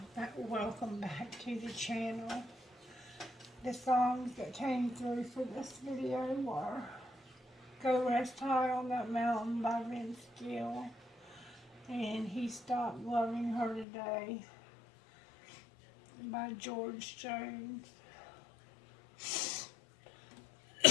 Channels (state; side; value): drops out; right; at 13.9 s